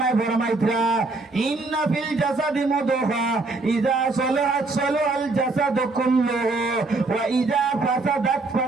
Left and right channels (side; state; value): left; quieter; 3.5 dB